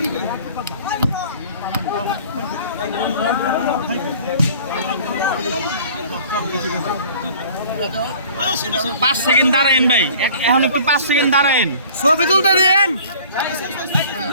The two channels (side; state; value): both; inverted; correlation -0.48